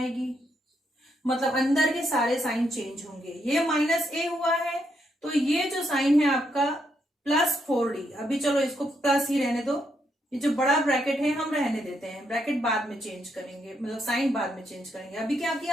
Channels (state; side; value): normal; both; correlation 0.78